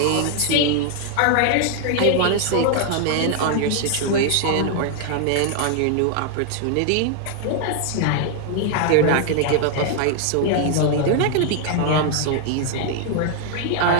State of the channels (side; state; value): both; different; correlation 0.00